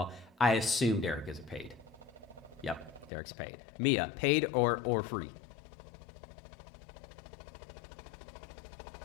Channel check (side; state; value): right; drops out; at 3.1 s